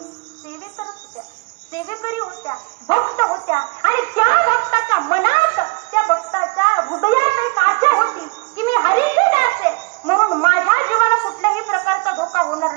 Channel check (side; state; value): left; quieter; 28.1 dB